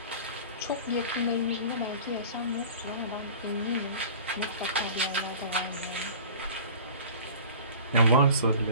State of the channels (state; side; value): inverted; both; correlation -0.41